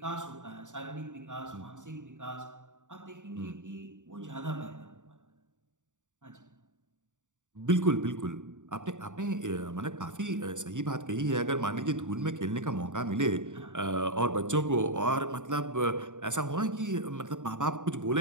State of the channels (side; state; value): left; late; 0.86 ms